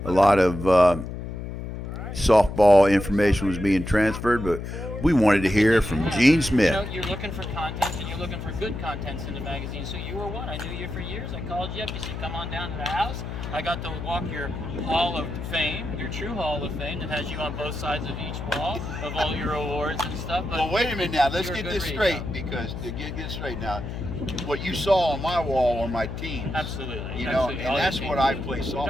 a lot of softball information was being transferred, but we wanted to hear from Gene Smith. You're looking for content, and you're looking for good contents in the magazine. So you were one. I knew you for years. I called you up. You said, come on down to the house. I got to walk your Hall of Fame, your true Hall of Fame that has you on both sides of each wall of all your awards and stuff. But well, wait a minute now. Let's get this straight, because to get straight now, what you saw on my wall are my teams. Absolutely. You know, and that's what I play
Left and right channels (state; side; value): noise; left; hum, 7 dB below the sound